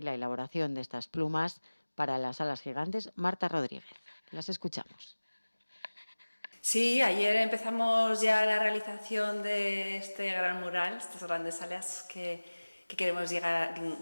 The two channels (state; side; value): inverted; both; correlation -1.00